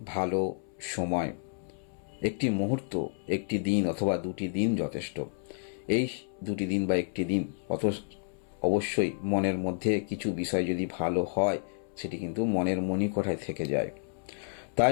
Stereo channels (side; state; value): right; silent; 57 dB below the other